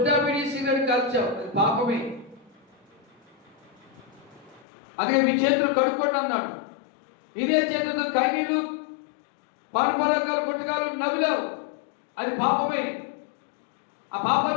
పిడి సిగరెట్ కాల్చావు, అది పాపమే. అదే మీ చేతులు కడుక్కోండి అన్నాడు. ఇదే చేతితో కైనీలు పానపరాగాలు గుట్టకాలు నవ్వులావు, అది పాపమే. ఆ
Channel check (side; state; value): right; drops out; at 4.7 s